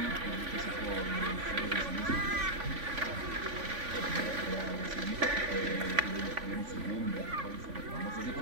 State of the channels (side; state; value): left; late; 3.5 ms